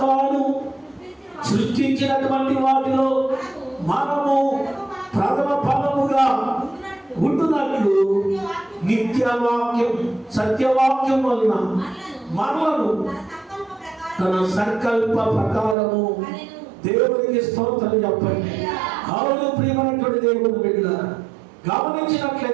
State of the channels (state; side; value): drops out; left; at 15.8 s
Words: తాను సృష్టించినటువంటి వాటిలో మనము ప్రథమ ఫలముగా ఉంటున్నట్లు నిత్యవాక్యం సత్యవాక్యం వలన మనలను తన సంకల్ప ప్రకారము దేవునికి స్తోత్రం చెప్పండి. అవును ప్రియమైనటువంటి దేవుని బిడ్డలారా,